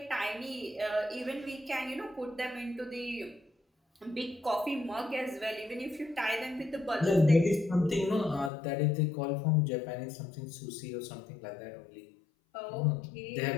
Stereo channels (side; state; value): right; drops out; at 8.5 s